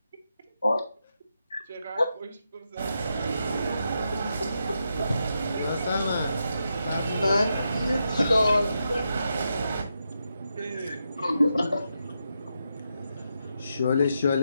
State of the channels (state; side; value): inverted; both; correlation -0.85